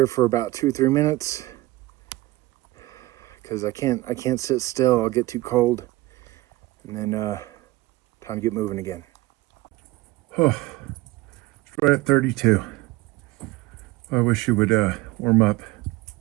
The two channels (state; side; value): quieter; left; 19.1 dB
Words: for about 2-3 minutes, because I can't sit still. I'll get too cold, and then time to get moving again. Oh, it's right at 32. I wish you would warm up.